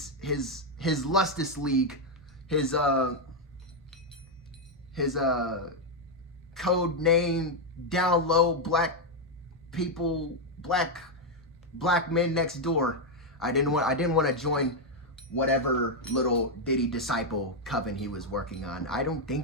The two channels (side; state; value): both; normal; correlation 0.02